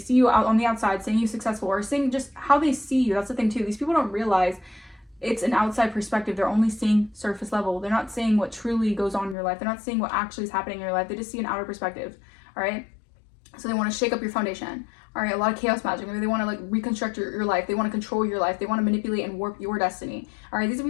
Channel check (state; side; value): drops out; right; at 9.3 s